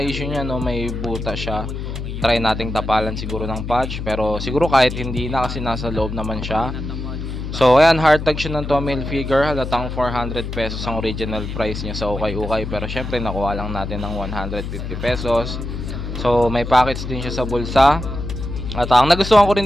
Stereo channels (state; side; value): noise; left; hum, 6 dB below the sound